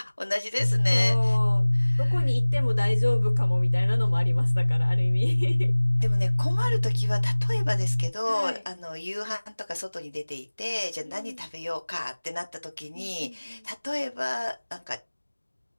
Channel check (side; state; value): both; inverted; correlation -1.00